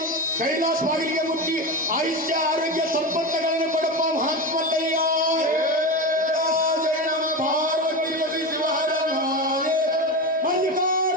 ಕೈಲಾಸವಾಗಲಿಗೆ ಮುಟ್ಟಿ ಆಯುಷ್ಯ ಆರೋಗ್ಯ ಸಂಪತ್ತುಗಳನ್ನು ಕೊಡಪ್ಪ ಮಹಾತ್ಮಲ್ಲಯ್ಯ ಜಯ ನಮ ಪಾರ್ವತಿ ಪತಿ ಶಿವಹರ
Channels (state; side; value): normal; both; correlation 0.20